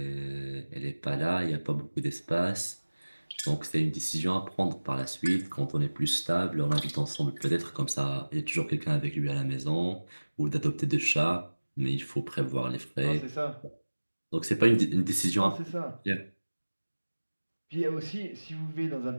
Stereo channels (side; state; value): both; inverted; correlation -1.00